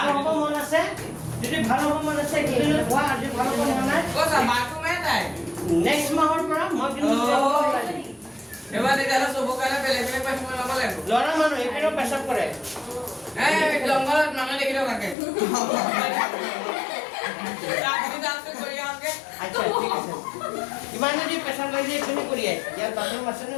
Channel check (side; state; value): right; drops out; at 15.2 s